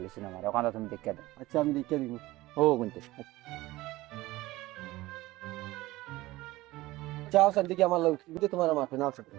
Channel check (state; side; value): quieter; left; 18.5 dB